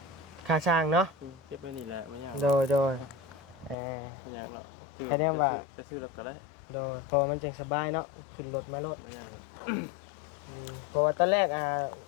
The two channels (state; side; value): drops out; right; at 3.8 s